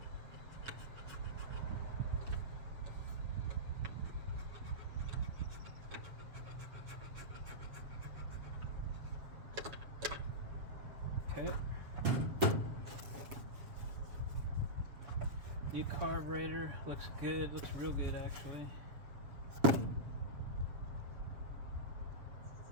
Okay. New carburetor, looks good, looks real good actually.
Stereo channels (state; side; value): late; left; 7.2 ms